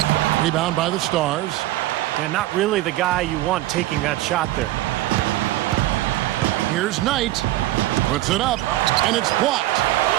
Rebound by the Stars. And not really the guy you want taking that shot there. Here's Knight. Puts it up, and it's blocked.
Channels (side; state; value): left; quieter; 16.2 dB